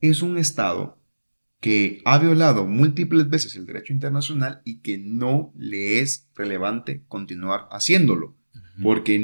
es un Estado que ha violado múltiples veces el derecho internacional y que no le es relevante continuar haciéndolo, Ujú, porque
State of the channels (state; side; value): inverted; both; correlation -1.00